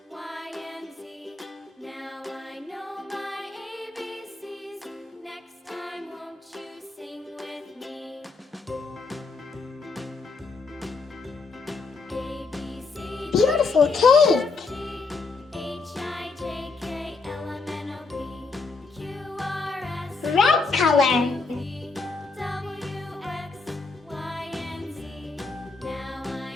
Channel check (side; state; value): right; quieter; 4.1 dB